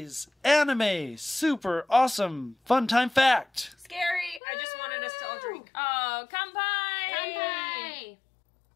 anime super awesome fun time fact. Scary. I just wanted us to all drink. Oh, kanpai! Kanpai!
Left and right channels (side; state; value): right; drops out; at 4.4 s